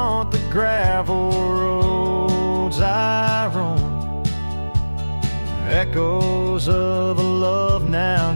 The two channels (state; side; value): inverted; both; correlation -1.00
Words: the gravel roads I roam. Echoes of a love now